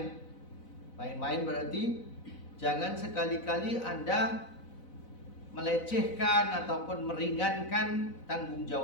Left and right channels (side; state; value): right; late; 4.0 ms